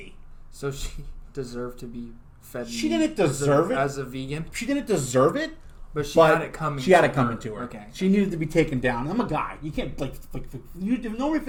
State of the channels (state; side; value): identical; both; correlation 1.00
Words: So she deserved to be fed she didn't deserve it as a vegan. She didn't deserve it. But she had it coming. She had it coming to her. Okay. She needed to be taken down. I'm a guy. You can't you normally if